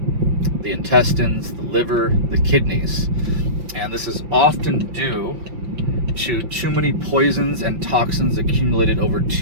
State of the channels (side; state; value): left; late; 5.9 ms